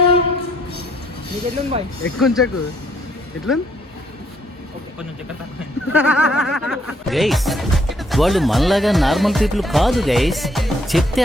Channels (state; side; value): normal; both; correlation 0.68